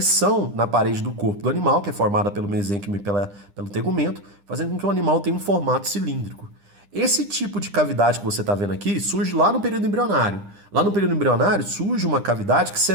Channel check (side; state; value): left; late; 9.9 ms